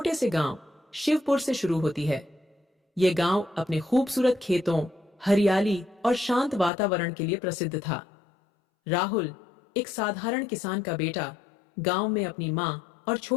से गांव शिवपुर से शुरू होती है। ये गांव अपने खूबसूरत खेतों, हरियाली और शांत वातावरण के लिए प्रसिद्ध था। राहुल एक साधारण किसान का बेटा गांव में अपनी मां और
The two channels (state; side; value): drops out; right; at 6.7 s